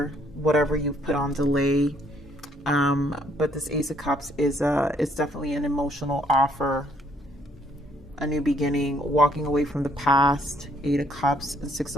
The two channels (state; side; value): normal; both; correlation 0.66